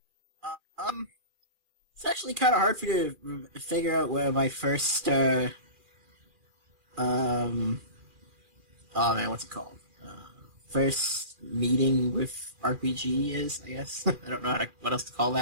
It's actually kind of hard for you to figure out where my first, oh man, what's it called? First meeting with RPG is, I guess. I don't know what else to call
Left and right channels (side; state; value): left; late; 2.4 ms